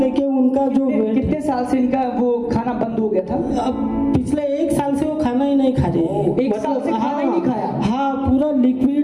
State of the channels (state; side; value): identical; both; correlation 1.00